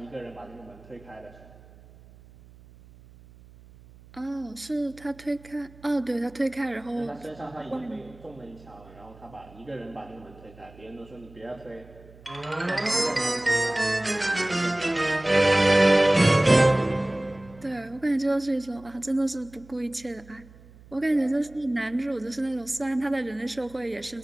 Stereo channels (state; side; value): noise; right; hum, 23 dB below the sound